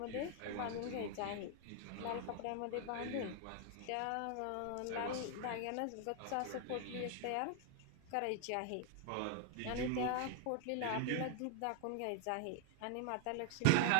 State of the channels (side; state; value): both; different; correlation 0.00